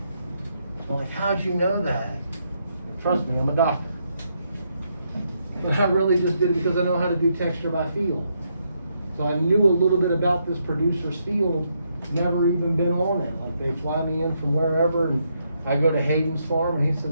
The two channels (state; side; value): inverted; both; correlation -0.78